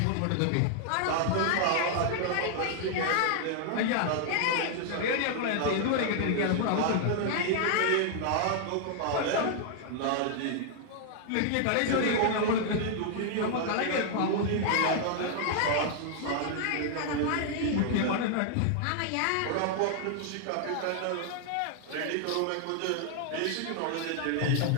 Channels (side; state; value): both; different; correlation 0.00